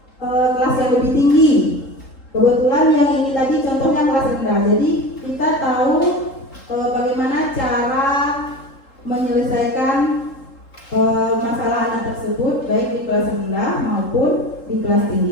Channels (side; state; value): right; late; 3.8 ms